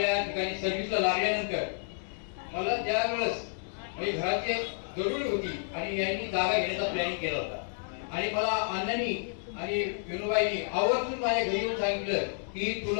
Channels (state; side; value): silent; right; digital silence